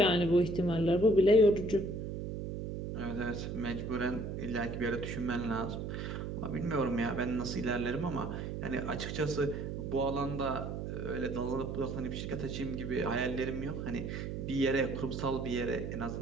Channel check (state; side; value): noise; right; hum, 5 dB below the sound